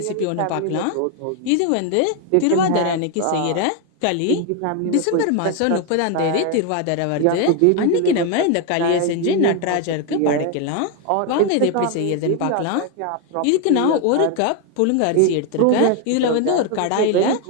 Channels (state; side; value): different; both; correlation 0.01